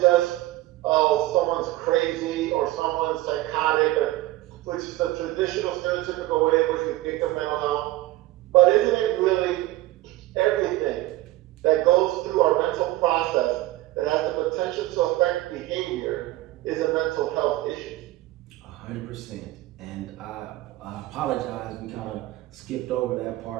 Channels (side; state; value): left; quieter; 17.2 dB